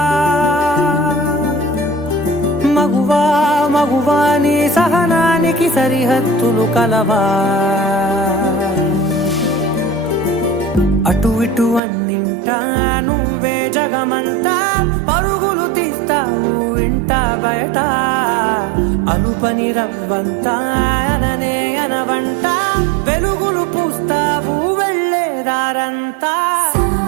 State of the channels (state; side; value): drops out; left; at 11.8 s